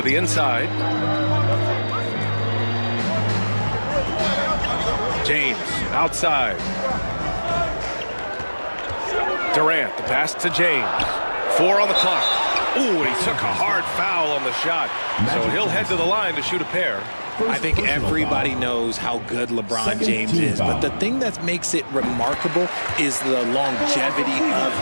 the inside. James outside. Durant, the pass to James. 4 on the clock. Ooh, and he took a hard foul on the shot. So he'll head to the line to shoot a pair. I think everybody knows how good LeBron James is, but the thing that makes it remarkable is the longevity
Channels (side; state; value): both; inverted; correlation -1.00